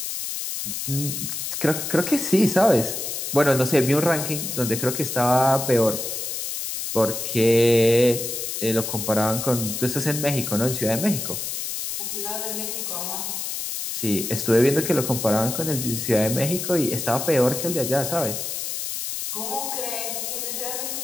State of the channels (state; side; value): noise; left; hiss, 4 dB below the sound